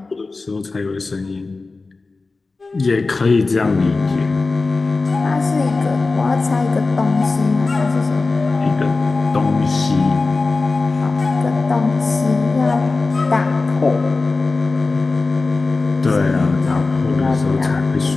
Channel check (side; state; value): right; quieter; 3.7 dB